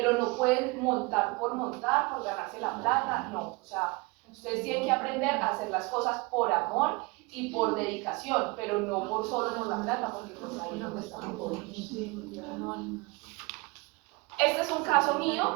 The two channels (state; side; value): quieter; left; 26.7 dB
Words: no pueden montar, por ganarse la plata, no. O sea, ustedes tienen que aprender a hacer las cosas por amor y por dedicación, pero no solo por la plata, porque pues ahí es donde estamos jodidos. Este es un caso